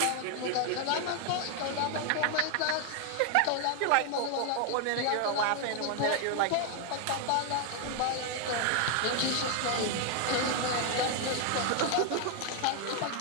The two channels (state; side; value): different; both; correlation 0.00